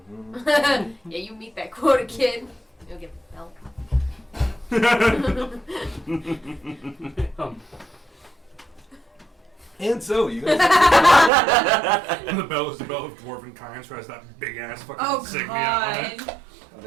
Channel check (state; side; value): drops out; left; at 11.3 s